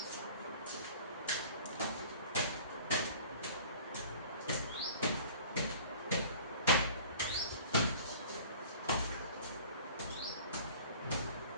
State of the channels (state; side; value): inverted; both; correlation -0.46